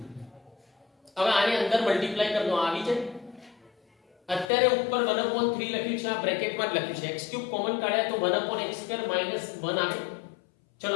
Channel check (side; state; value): right; drops out; at 4.5 s